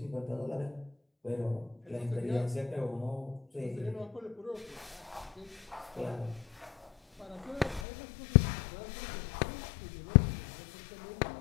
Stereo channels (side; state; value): right; drops out; at 7.9 s